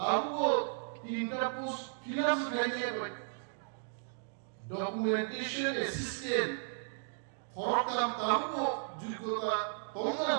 তিনটা পোস্ট ফিনান্স খাইয়ে পায় ডকুমেন্টেশন অ্যাসিস্ট্যান্ট খরকাম তাও যোগ্যতা তোমরা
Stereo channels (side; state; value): left; silent; digital silence